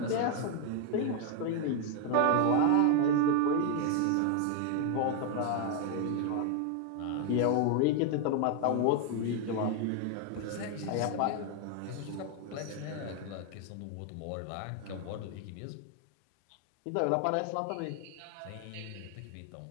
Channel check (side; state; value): both; different; correlation 0.01